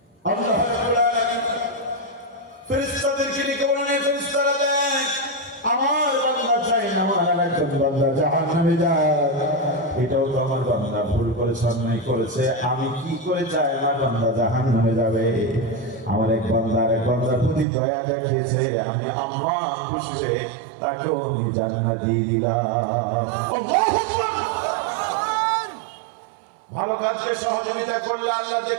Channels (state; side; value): drops out; left; at 17.7 s